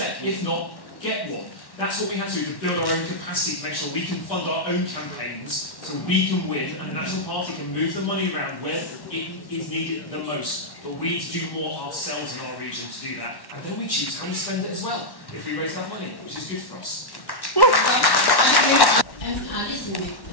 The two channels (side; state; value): right; late; 1.1 ms